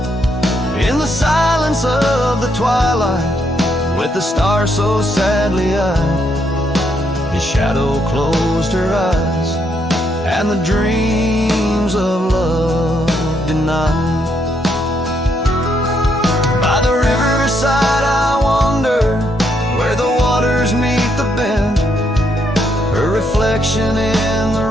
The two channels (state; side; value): normal; both; correlation 0.75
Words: In the silence of the twilight, with the stars so sadly eyed, his shadow closed her eyes, and the dreams of love denied. night. By the riverside I wander, where the waters meet the bend. Her reflection in